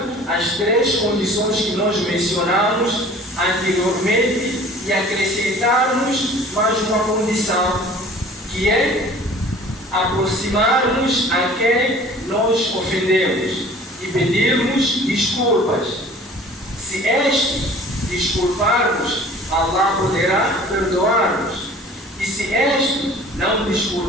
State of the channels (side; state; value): both; normal; correlation 0.47